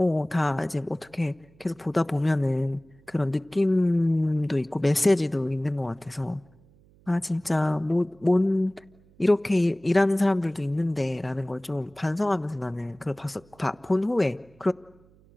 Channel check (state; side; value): noise; right; hum, 29 dB below the sound